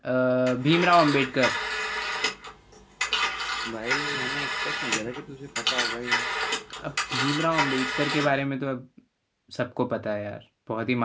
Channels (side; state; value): both; identical; correlation 1.00